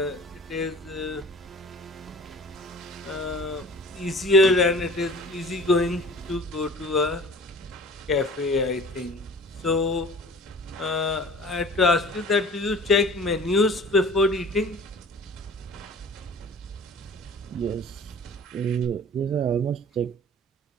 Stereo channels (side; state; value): both; normal; correlation 0.44